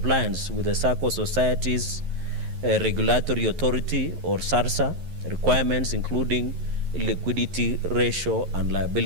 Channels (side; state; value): left; late; 11 ms